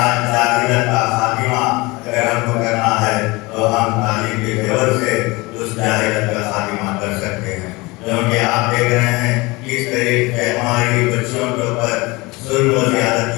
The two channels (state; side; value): quieter; right; 23.6 dB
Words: جاہلیت کا خاتمہ اگر ہم کو کرنا ہے تو ہم تعلیم کے زیور سے اس جاہلیت کا خاتمہ کر سکتے ہیں، کیونکہ آپ دیکھ رہے ہیں کس طریقے سے ہماری بچیوں کے اوپر ظلم و